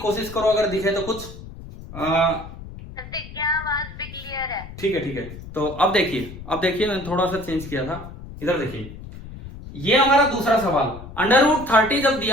करो, अगर दिखे तो कुछ क्या आवाज भी क्लियर है? ठीक है। तो अब देखिए मैंने थोड़ा सा चेंज किया था। इधर देखिए, ये हमारा दूसरा सवाल। √30 जब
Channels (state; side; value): noise; left; rumble, 14 dB below the sound